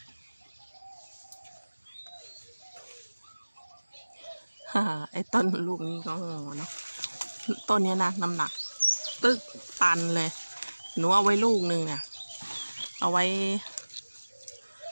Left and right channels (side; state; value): both; inverted; correlation -1.00